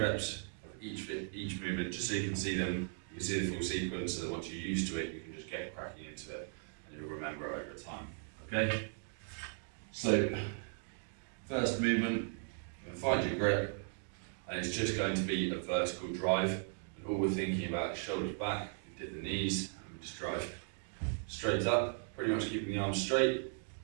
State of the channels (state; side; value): silent; left; 53 dB below the other